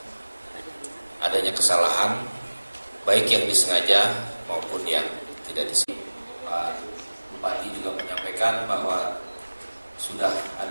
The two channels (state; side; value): inverted; both; correlation -1.00